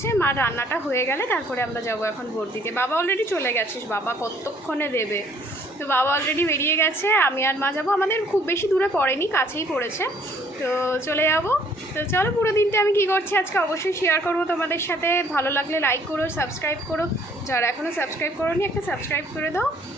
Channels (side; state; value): both; normal; correlation 0.61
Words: মা রান্নাটা হয়ে গেলে তারপরে আমরা যাব এখন ভোট দিতে। বাবা অলরেডি চলে গেছিস, বাবা কতক্ষণে দেবে। তো বাবা অলরেডি বেরিয়ে গেছে, আমি আর মা যাবো। আমাদের খুব বেশি দূরে পড়েনি, কাছেই পড়েছে, তো চলে যাব। তো চলো, পুরো দিনটা আমি কী করছি আজকে অবশ্যই শেয়ার করবো তোমাদের সাথে। ভালো লাগলে লাইক করো, সাবস্ক্রাইব করো, যারা এখনও সাবস্ক্রাইব করোনি একটা সাবস্ক্রাইব করে দাও।